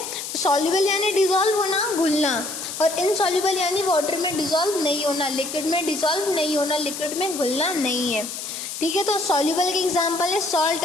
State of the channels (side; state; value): left; noise; hiss, 7 dB below the sound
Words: सॉल्यूबल यानी डिसॉल्व होना, घुलना, और इनसॉल्यूबल यानी वाटर में डिसॉल्व नहीं होना, लिक्विड में डिसॉल्व नहीं होना, लिक्विड में घुलना नहीं है, ठीक है। तो सॉल्यूबल के एग्जांपल है सॉल्ट